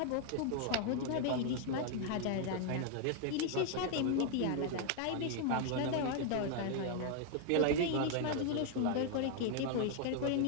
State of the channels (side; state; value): both; different; correlation 0.00